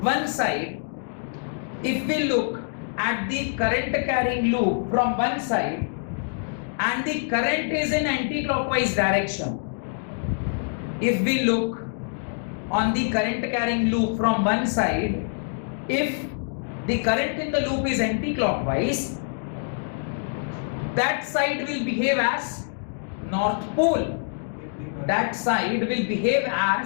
one side, if we look at the current carrying loop from one side and the current is in anti-clockwise direction, if we look on the current carrying loop from one side, if the current in the loop is anti-clockwise, that side will behave as north pole, that side will behave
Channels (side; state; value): right; silent; digital silence